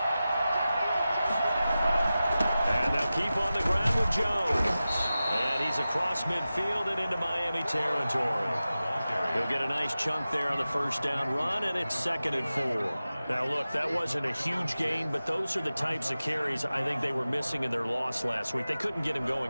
And they'll keep on the ground with Jones. And he's across midfield and into Miami territory. He'll get a nice chunk there on the first down run, and it's 2nd and 4. Now, look, that wasn't a huge gain, but those are the types of carries I think they were missing in their loss last week. They couldn't get him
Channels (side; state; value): both; inverted; correlation -0.95